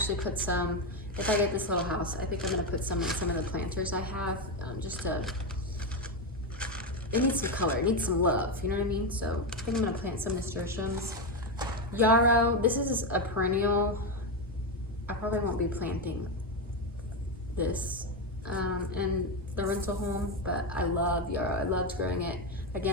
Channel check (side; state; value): both; normal; correlation 0.09